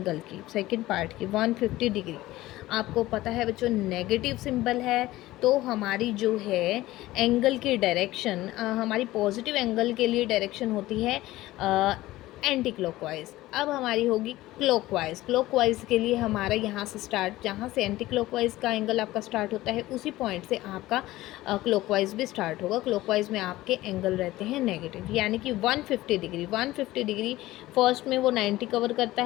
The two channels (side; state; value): right; quieter; 17.0 dB